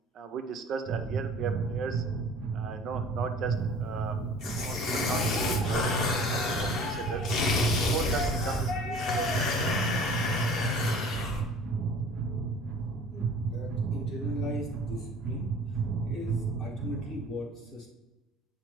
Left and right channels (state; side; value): normal; both; correlation 0.46